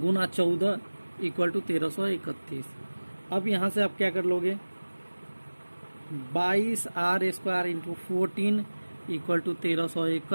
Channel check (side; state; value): both; inverted; correlation -1.00